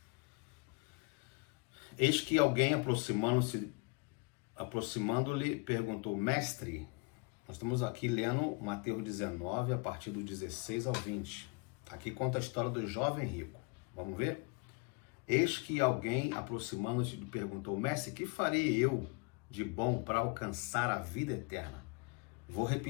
Eis que alguém aproximando-lhe, perguntou, mestre, nós estamos aqui lendo Mateus 19, a partir do 16 ao 20. Aqui conta a história do jovem rico. Vamos ver? Eis que alguém, aproximando-se, lhe perguntou, mestre, que farei eu de bom para alcançar a vida eterna? Vou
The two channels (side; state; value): right; quieter; 30.2 dB